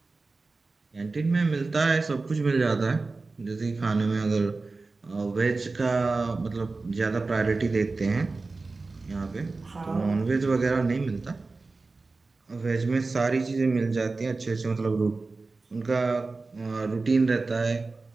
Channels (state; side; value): quieter; left; 3.7 dB